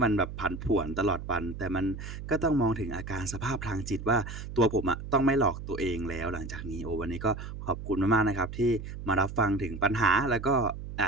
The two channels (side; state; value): right; noise; hum, 9 dB below the sound